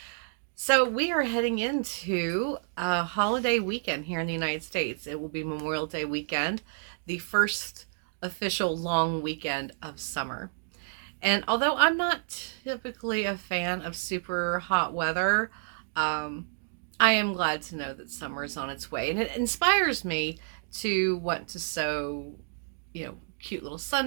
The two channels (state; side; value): silent; left; digital silence